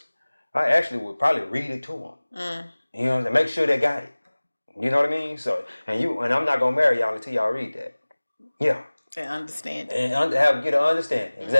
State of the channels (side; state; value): both; inverted; correlation -1.00